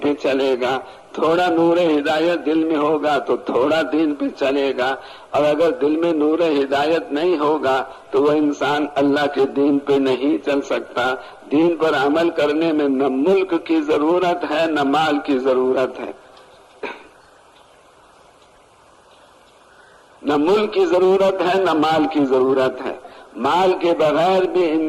چلے گا، تھوڑا نور ہدایت دل میں ہوگا تو تھوڑا دین پہ چلے گا، اور اگر دل میں نور ہدایت نہیں ہوگا تو وہ انسان اللہ کے دین پہ نہیں چل سکتا۔ دین پر عمل کرنے میں نہ ملک کی ضرورت ہے نہ مال کی ضرورت ہے، نہ ملک کی ضرورت ہے نہ مال کی ضرورت ہے۔ مال کے بغیر بھی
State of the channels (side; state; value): both; identical; correlation 1.00